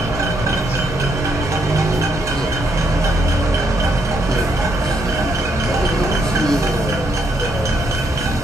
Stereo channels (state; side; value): normal; both; correlation 0.75